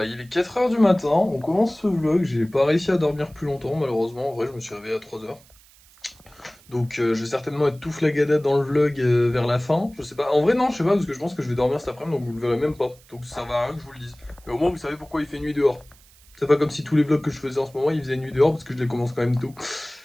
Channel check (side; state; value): right; noise; hiss, 27 dB below the sound